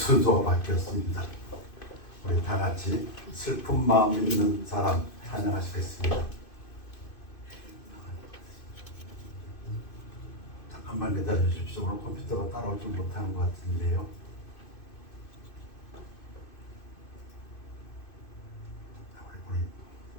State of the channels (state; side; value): late; right; 2.5 ms